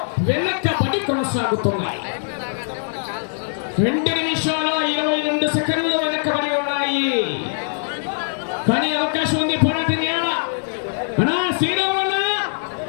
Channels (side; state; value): right; silent; digital silence